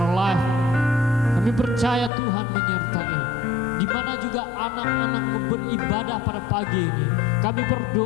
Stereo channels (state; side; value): drops out; right; at 2.1 s